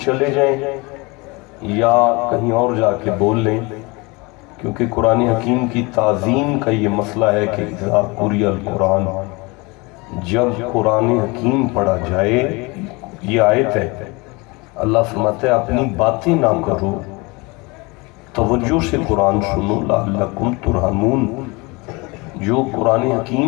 چلے جائیں یا کہیں اور جا کے بول لیں، کیونکہ قرآن حکیم کی تعظیم کا یہ مسئلہ ہے کہ اذا قرئ القرآن، جب قرآن حکیم پڑھا جائے، یہ آیت ہے، اللہ فرماتا ہے اپنی باتیں نہ کرو، توجہ سے قرآن سنو لعلکم ترحمون۔ جو قرآن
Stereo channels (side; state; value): right; quieter; 26.2 dB